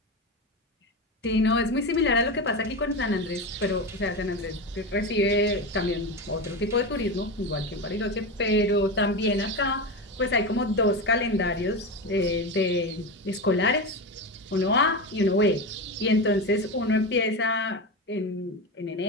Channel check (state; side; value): normal; both; correlation 0.19